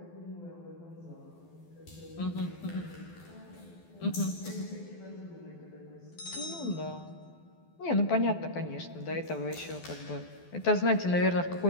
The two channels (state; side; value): late; right; 12 ms